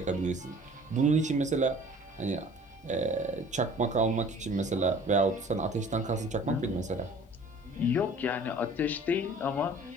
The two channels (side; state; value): both; normal; correlation 0.49